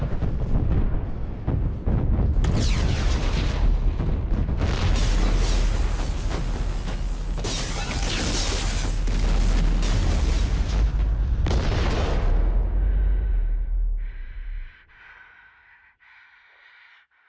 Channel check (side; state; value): both; identical; correlation 1.00